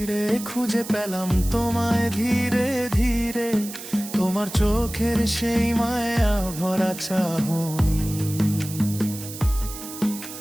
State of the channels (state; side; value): noise; right; hiss, 12 dB below the sound